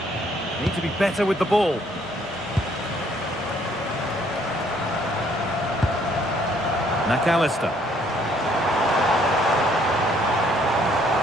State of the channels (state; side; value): normal; both; correlation 0.64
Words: Need to be better with the ball. McAllister.